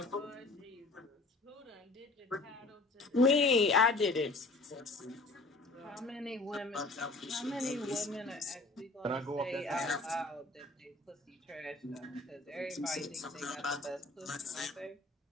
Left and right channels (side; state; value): right; quieter; 3.1 dB